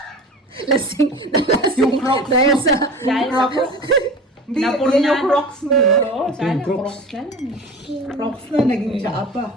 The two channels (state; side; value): normal; both; correlation 0.35